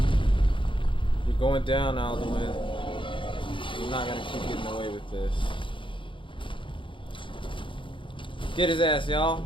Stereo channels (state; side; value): late; right; 0.24 ms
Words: You're going down, Alduin. You're not gonna keep getting away with this. Get his ass, y'all.